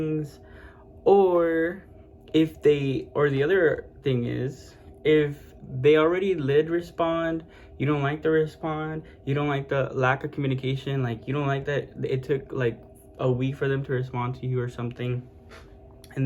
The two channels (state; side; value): identical; both; correlation 1.00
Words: Or the other thing is, if they already did respond, you don't like the respond, you don't like the lack of communication, like you don't like that it took like a week for them to respond to you or something,